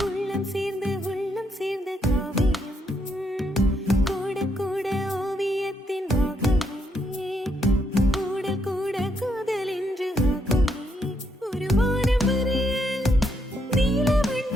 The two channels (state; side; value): normal; both; correlation 0.76